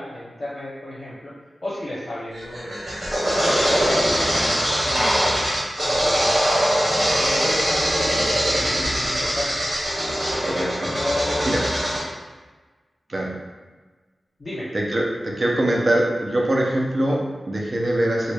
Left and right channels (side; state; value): both; normal; correlation 0.95